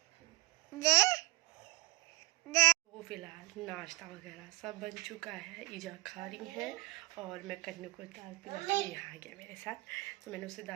ये तो फिलहाल नाश्ता वगैरह सब बन चुका है। ईजा खा रही है और मैं कन्नू को दाल पिला के यहाँ आ गया मेरे साथ। तो मैंने उसे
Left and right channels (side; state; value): left; quieter; 22.2 dB